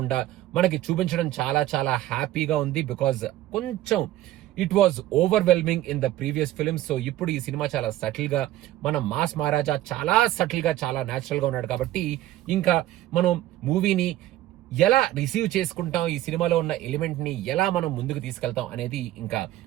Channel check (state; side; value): quieter; left; 14.5 dB